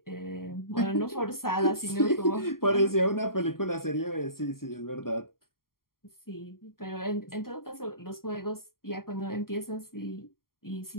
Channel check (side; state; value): right; late; 0.92 ms